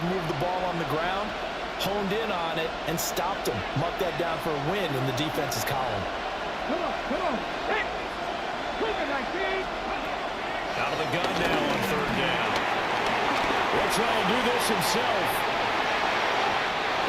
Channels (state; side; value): identical; both; correlation 1.00